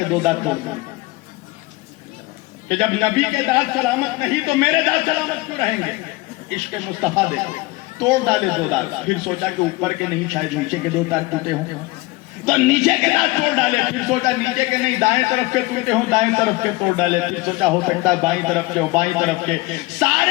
2 دانت توڑ دیے کہ جب نبی کے دانت سلامت نہیں تو میرے دانت سلامت کیوں رہیں گے. عشق مصطفیٰ دیکھو, توڑ ڈالے 2 دانت. پھر سوچا کہ اوپر کے نہیں, شاید نیچے کے 2 دانت ٹوٹے ہوں تو نیچے کے دانت توڑ ڈالے. پھر سوچا نیچے کے نہیں, دائیں طرف کے ٹوٹے ہوں, دائیں طرف کے توڑ ڈالے. پھر سوچا ہو سکتا ہے بائیں طرف کے ہو, بائیں طرف کے,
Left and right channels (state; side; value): quieter; right; 21.0 dB